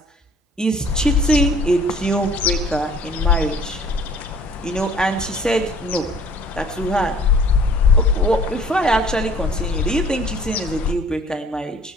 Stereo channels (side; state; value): both; normal; correlation 0.53